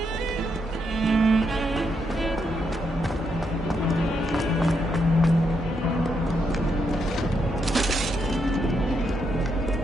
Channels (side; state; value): both; normal; correlation 0.79